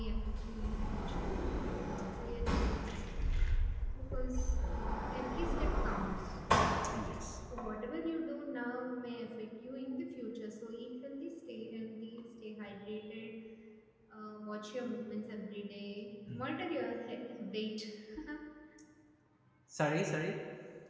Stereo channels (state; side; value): identical; both; correlation 1.00